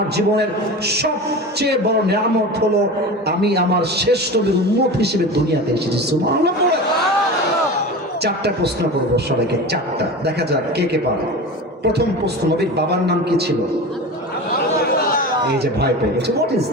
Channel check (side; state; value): both; normal; correlation 0.30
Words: জীবনের সবচেয়ে বড় নিয়ামত হলো আমি আমার শেষ নবীর উম্মত হিসেবে দুনিয়াতে এসেছি। সুবহানাল্লাহ। চারটা প্রশ্ন করব সবাইকে, চারটা, দেখা যাক কে কে পারে। প্রথম প্রশ্ন, নবীর বাবার নাম কি ছিল? এই যে ভয় পেয়ে গেছে, হোয়াট ইজ